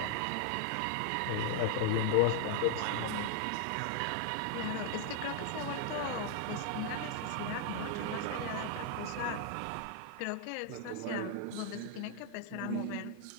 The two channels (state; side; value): different; both; correlation 0.00